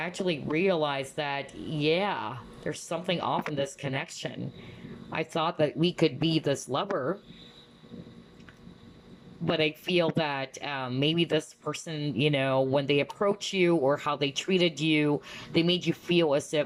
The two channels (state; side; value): identical; both; correlation 1.00